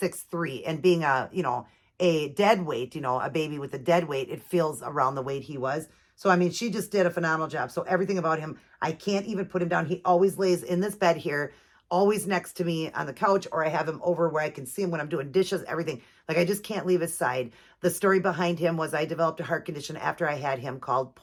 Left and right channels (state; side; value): identical; both; correlation 1.00